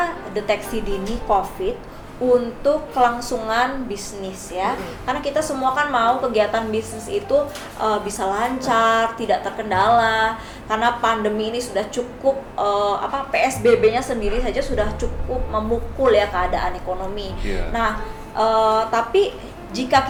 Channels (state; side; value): identical; both; correlation 1.00